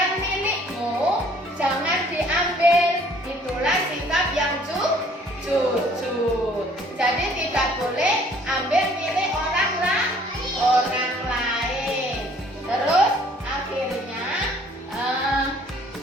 milikmu, jangan diambil. Itulah sikap yang jujur. Jadi tidak boleh ambil milik orang lain. Terus akhirnya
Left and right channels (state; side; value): normal; both; correlation 0.58